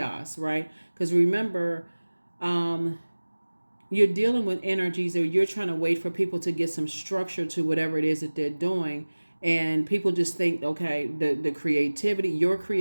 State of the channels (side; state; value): both; inverted; correlation -1.00